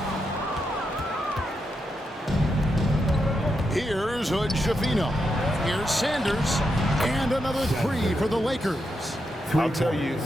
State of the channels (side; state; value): both; normal; correlation 0.84